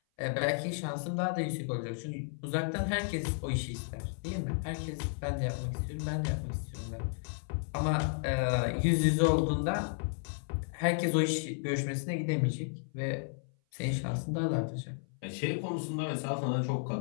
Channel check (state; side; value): silent; right; 56 dB below the other